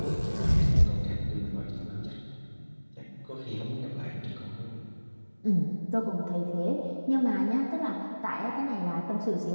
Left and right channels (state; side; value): inverted; both; correlation -1.00